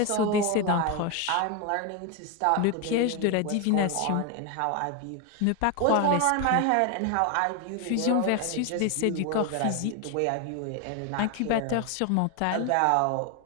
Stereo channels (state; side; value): different; both; correlation 0.01